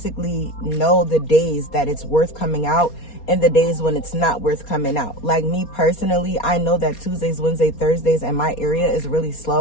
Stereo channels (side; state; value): right; late; 4.3 ms